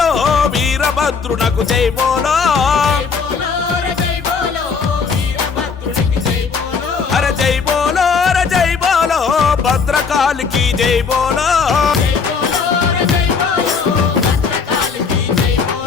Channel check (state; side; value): quieter; right; 5.5 dB